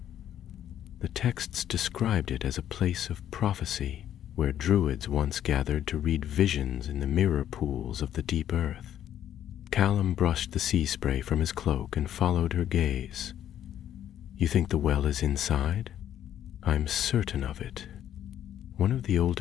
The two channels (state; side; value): quieter; right; 10.8 dB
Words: The texts described it as a place of prophecy, where druids once gathered to read visions in the mirror pools of the deep earth. Callum brushed the sea spray from his cloak and followed her gaze. "You think the well is inside?" "I'm certain of it." One of the